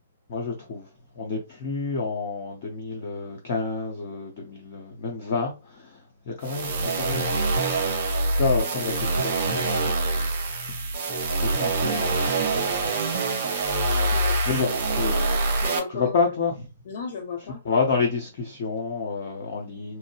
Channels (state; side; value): inverted; both; correlation -0.58